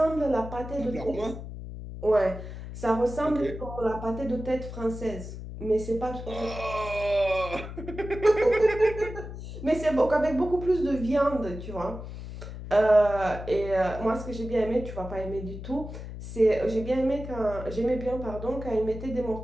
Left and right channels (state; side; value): noise; left; hum, 10 dB below the sound